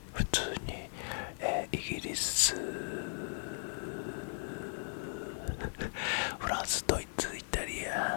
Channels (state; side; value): silent; right; digital silence